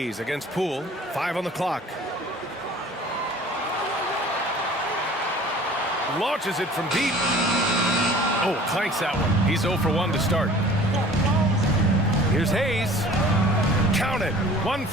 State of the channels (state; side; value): normal; both; correlation 0.47